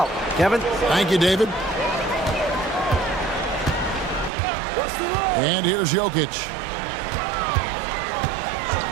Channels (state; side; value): drops out; left; at 4.3 s